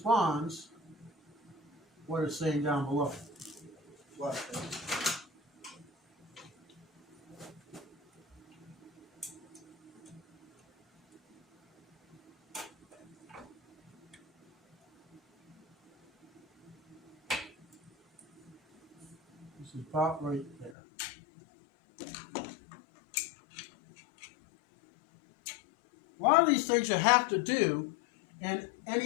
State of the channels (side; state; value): right; drops out; at 20.8 s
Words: what it's saying down below. What? This is about right there. A lot of these things you have to do in